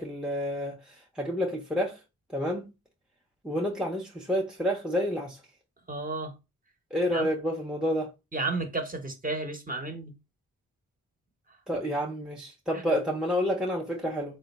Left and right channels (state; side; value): normal; both; correlation 0.55